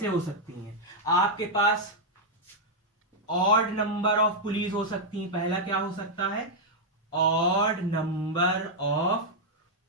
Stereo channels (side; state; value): both; normal; correlation -0.03